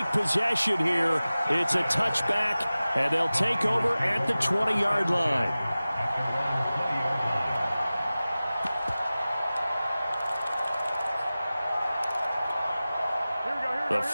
possession here. It's a touchback, and they'll take over at the 20-yard line. The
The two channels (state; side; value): inverted; both; correlation -0.97